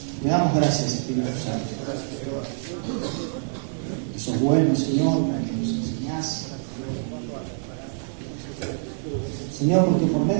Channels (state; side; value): silent; left; 61 dB below the other